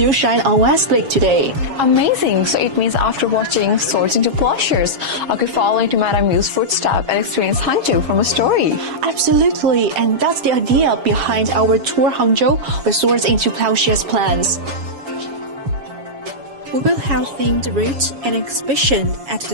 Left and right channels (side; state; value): left; late; 7.2 ms